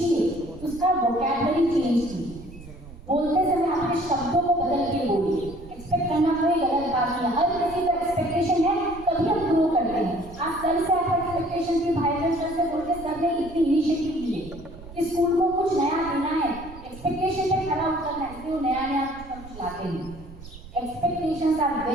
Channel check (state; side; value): noise; right; rumble, 17 dB below the sound